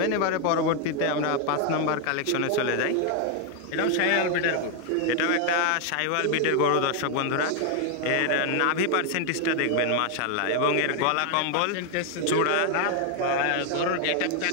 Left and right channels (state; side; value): different; both; correlation 0.01